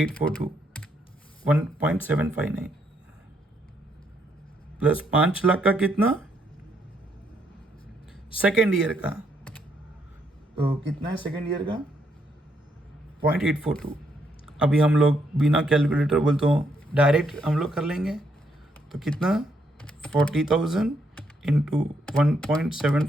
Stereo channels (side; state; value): both; normal; correlation 0.74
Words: 1.759 प्लस 5 लाख का कितना, 2nd ईयर का, तो कितना है 2nd ईयर का 0.842। अभी हम लोग बिना कैलकुलेटर बोलते हो डायरेक्ट हम लोग कर लेंगे, तो कितना 40,000 इंटू